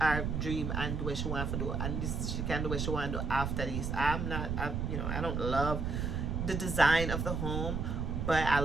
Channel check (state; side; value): noise; right; rumble, 1 dB below the sound